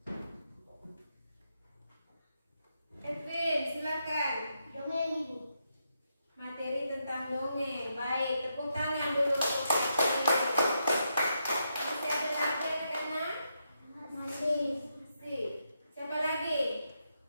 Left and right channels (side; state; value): both; inverted; correlation -0.82